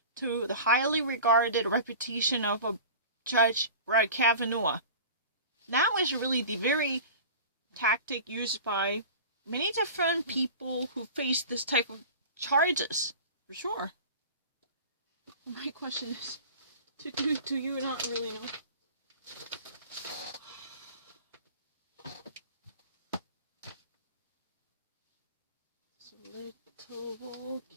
to the highly regarded reputation of a Judge Brett Kavanaugh. That was really the very tactic used by many different people who face this type of charges, for sure. My question is, do you not really know? It's a little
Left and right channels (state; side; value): inverted; both; correlation -0.37